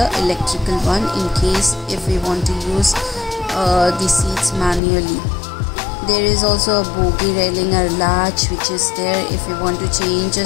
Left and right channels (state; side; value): drops out; right; at 4.8 s